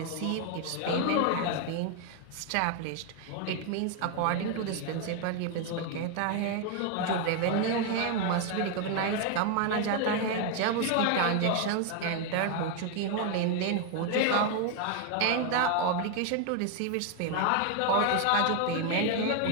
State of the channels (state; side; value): different; both; correlation 0.01